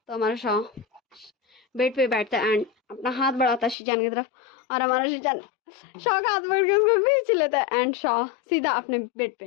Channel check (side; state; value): right; drops out; at 3.8 s